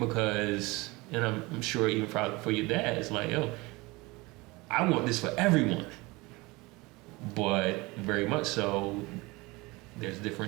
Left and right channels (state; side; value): quieter; left; 23.4 dB